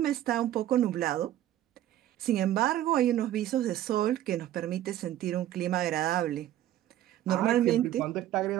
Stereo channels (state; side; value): quieter; left; 12.8 dB